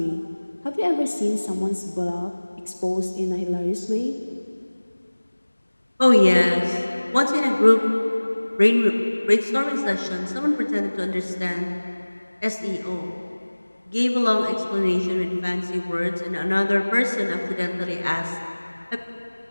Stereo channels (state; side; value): inverted; both; correlation -1.00